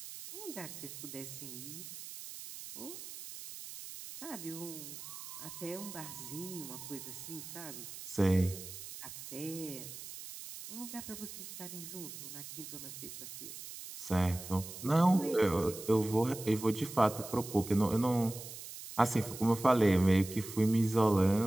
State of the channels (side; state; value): right; noise; hiss, 11 dB below the sound